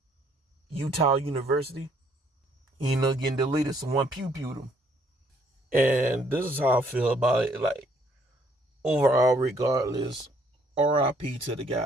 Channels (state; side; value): normal; both; correlation 0.65